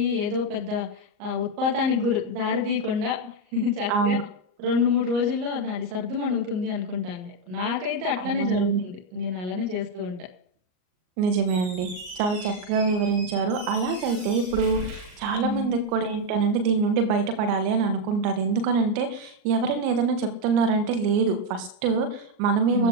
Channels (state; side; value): late; left; 39 ms